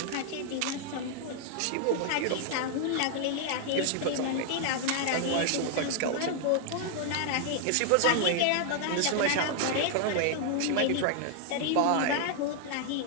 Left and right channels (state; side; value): different; both; correlation 0.00